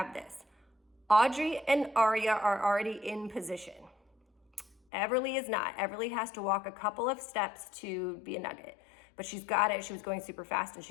this. Audrey and Aria are already in position. Everly is not. Everly has to walk a couple of steps to be a nugget, but she's got it. She was going super fast and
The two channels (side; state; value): right; drops out; at 4.8 s